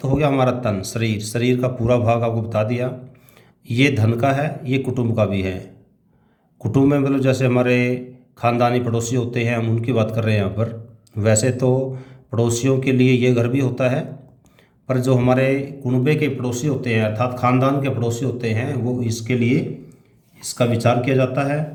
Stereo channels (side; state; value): both; identical; correlation 1.00